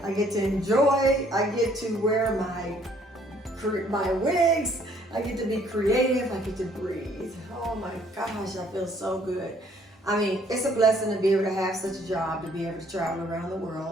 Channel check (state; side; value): normal; both; correlation 0.62